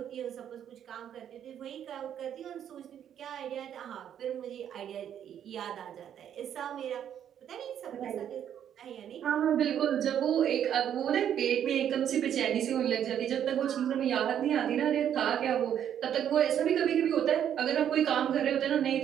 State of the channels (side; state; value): left; quieter; 9.6 dB